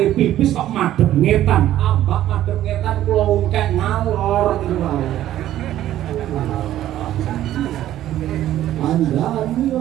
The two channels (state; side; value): quieter; left; 12.9 dB